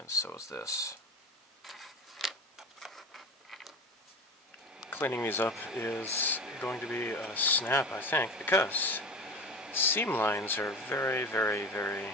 so is this. Cleaning these up is going to be a snap, I think, because seam lines are very, very, very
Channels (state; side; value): normal; both; correlation 0.31